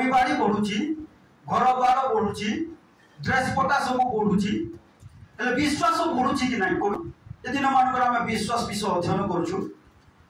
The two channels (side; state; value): both; identical; correlation 1.00